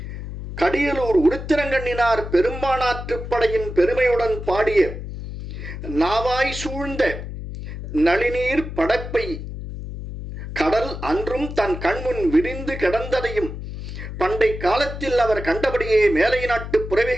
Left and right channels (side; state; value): left; noise; hum, 8 dB below the sound